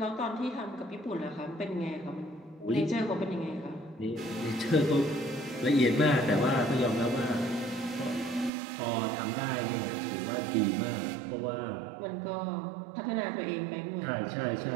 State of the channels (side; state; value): left; drops out; at 8.5 s